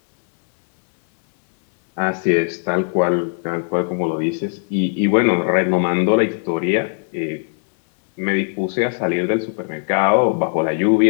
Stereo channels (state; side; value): silent; right; 61 dB below the other